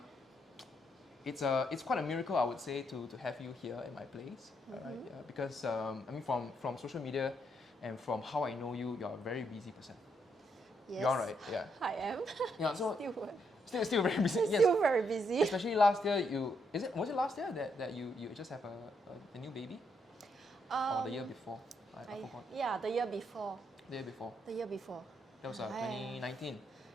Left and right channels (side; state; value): both; normal; correlation 0.76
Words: kind. it's quite a miracle, I would say, to have you here in my place, right? Yeah, because I mean, from social media and from how I know you, you're a very busy person. Yes. You're right, yeah. I am. Yeah, so Still still very busy. Yes. still very busy. Especially last year, was it last year that you just have a new baby, or the year before? I forgot. Yeah, the year before. The year before. The year before. That was 2019.